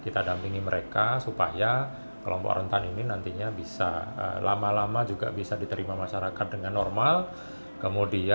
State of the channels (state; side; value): inverted; both; correlation -1.00